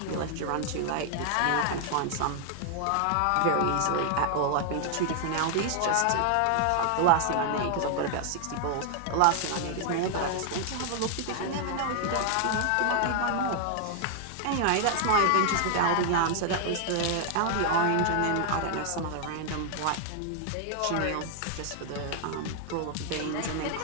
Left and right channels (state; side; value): different; both; correlation 0.00